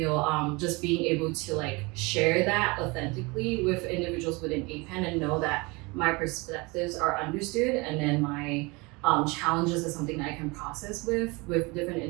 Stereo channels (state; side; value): quieter; left; 26.2 dB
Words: just being able to like share that authentically with individuals within APAN and know that my perspectives are understood, and then my challenges is something that I can process with different